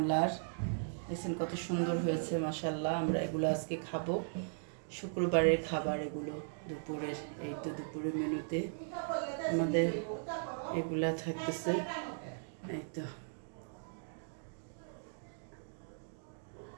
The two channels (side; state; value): left; silent; digital silence